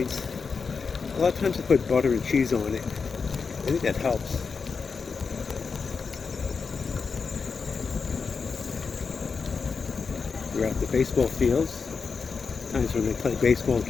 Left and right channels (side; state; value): right; quieter; 5.2 dB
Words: A lot of times I put butter and cheese on it. I think that helps. We're at the baseball fields. Times when they play baseball, it